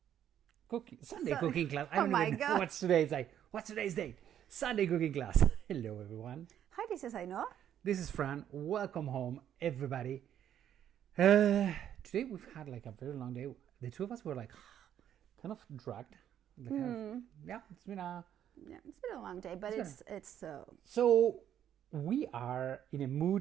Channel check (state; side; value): quieter; left; 10.2 dB